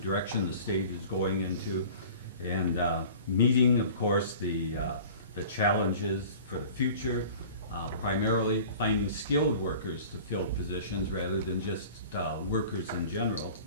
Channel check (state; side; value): inverted; both; correlation -0.43